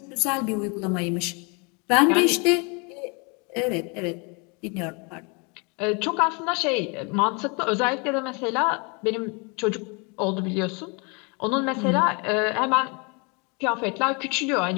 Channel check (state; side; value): quieter; right; 32.3 dB